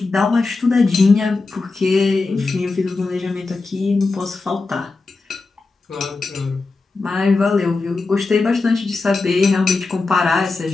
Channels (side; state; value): right; quieter; 3.7 dB